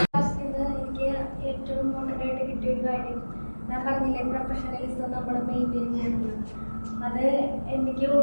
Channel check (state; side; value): inverted; both; correlation -1.00